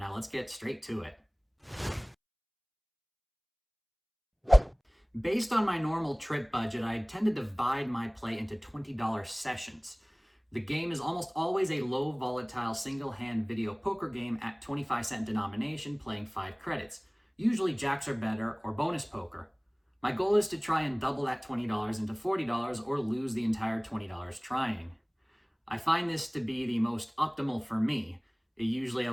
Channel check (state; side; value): identical; both; correlation 1.00